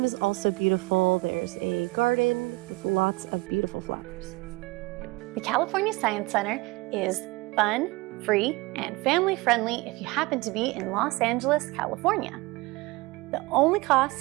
is also beautiful. There's a garden with lots of beautiful flowers. The California Science Center is fun, free, and family-friendly if you happen to be in Los Angeles, California. The only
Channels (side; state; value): left; quieter; 23.1 dB